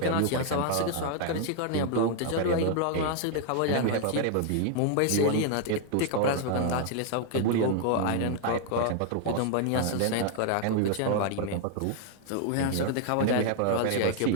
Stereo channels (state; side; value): different; both; correlation 0.00